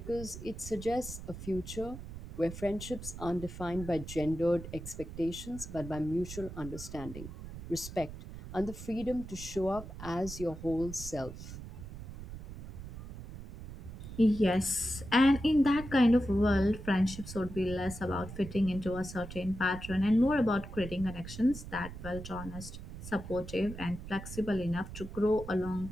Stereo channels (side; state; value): right; noise; rumble, 11 dB below the sound